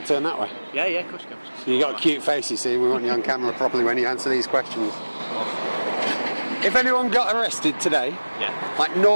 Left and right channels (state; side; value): inverted; both; correlation -1.00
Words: I turn that way? Yeah, of course you can. You got a cute face, you see. We want you on camera properly when you answer these questions. If anyone got arrested today, like